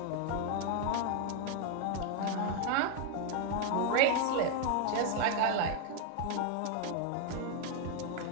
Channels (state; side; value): different; both; correlation 0.01